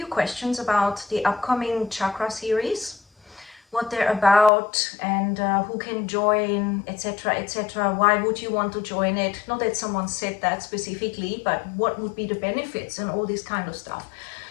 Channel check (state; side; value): drops out; right; at 4.5 s